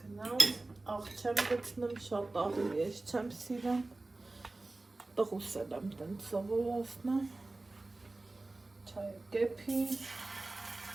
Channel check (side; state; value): left; quieter; 3.1 dB